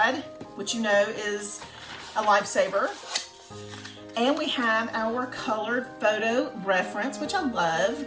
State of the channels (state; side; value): identical; both; correlation 1.00